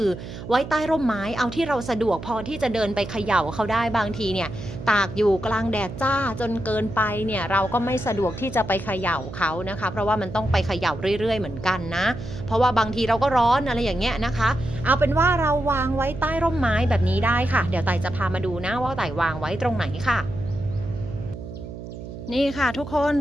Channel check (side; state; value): right; noise; hum, 11 dB below the sound